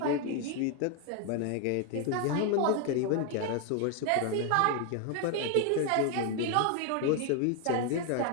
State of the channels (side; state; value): both; different; correlation 0.00